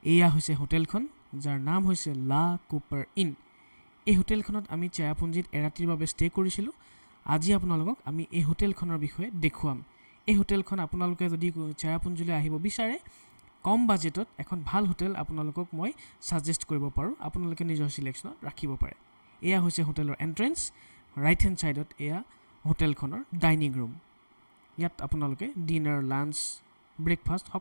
এয়া হৈছে হোটেলখন যাৰ নাম হৈছে লা কুপাৰ ইন এই হোটেলখনত আমি চেৰাপুঞ্জীত এৰাতিৰ বাবে ষ্টে কৰিছিলোঁ আজি আপোনালোকক আমি এই হোটেলখনৰ বিষয়ে দেখুৱাম এই হোটেলখন আপোনালোকে যদি চেৰাপুঞ্জীলৈ আহিব বিচাৰে কম বাজেটত এখন ভাল হোটেল আপোনালোকক মই সাজেষ্ট কৰিব পাৰোঁ আপোনালোকে নিজৰ সিলেকশ্যনত ৰাখিব পাৰে এয়া হৈছে হোটেলৰ এন্ট্ৰেন্স ৰাইট হেণ্ড সাইডত এয়া হোটেলখনৰ ডাইনিং ৰুম ইয়াত আপোনালোকে ডিনাৰ লাঞ্চ ব্ৰেকফাষ্ট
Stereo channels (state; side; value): inverted; both; correlation -1.00